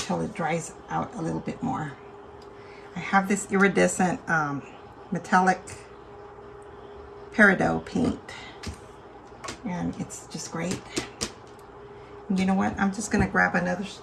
it dries out a little bit more. I have this iridescent metallic peridot paint, and it's just great. And you know what? I'm just gonna grab another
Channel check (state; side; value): identical; both; correlation 1.00